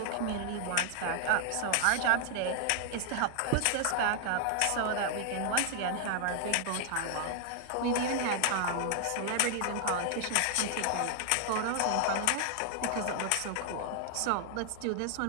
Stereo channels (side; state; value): both; different; correlation 0.00